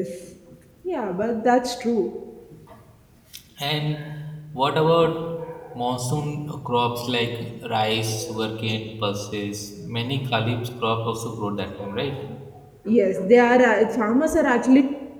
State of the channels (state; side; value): identical; both; correlation 1.00